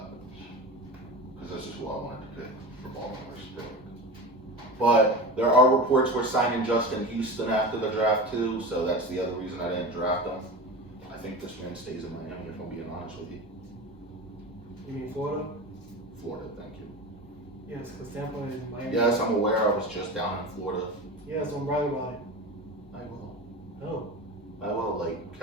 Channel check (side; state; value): both; normal; correlation 0.28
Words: Because this is who I wanted to pick for Baltimore's pick. But there are reports we're signing Justin Houston after the draft too, so that's the other reason I didn't draft him. I think this man stays in Miami, if I'm being honest with you. You mean Florida? Florida, thank you. Yes, because Tampa is Miami. Yes, I'm aware. I was just down in Florida. Yes, I'm bragging about it. I will. No. I will, like